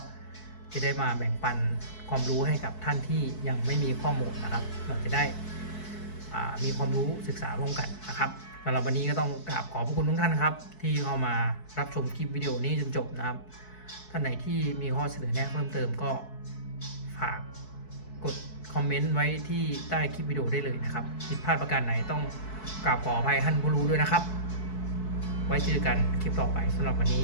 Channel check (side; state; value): right; late; 4.6 ms